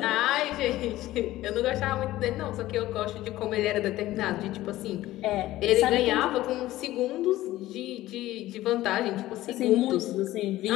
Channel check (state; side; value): quieter; right; 15.9 dB